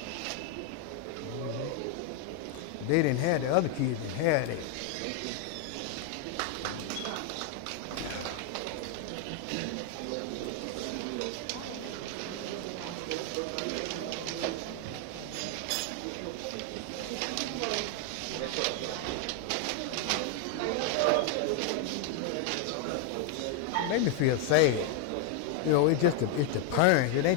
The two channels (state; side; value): different; both; correlation 0.00